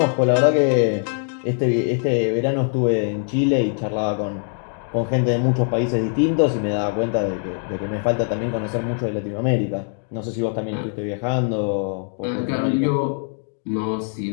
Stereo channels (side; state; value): right; silent; 56 dB below the other